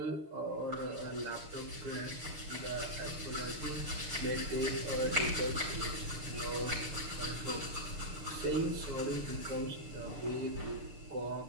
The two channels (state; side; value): late; left; 6.8 ms